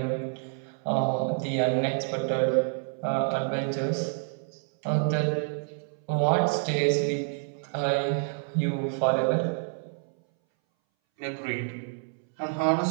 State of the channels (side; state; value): left; silent; 59 dB below the other